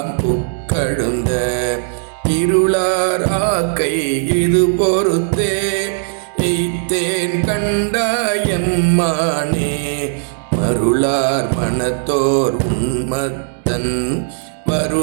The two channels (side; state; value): left; silent; digital silence